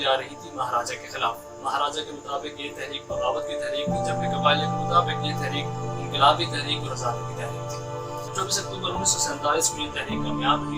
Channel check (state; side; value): identical; both; correlation 1.00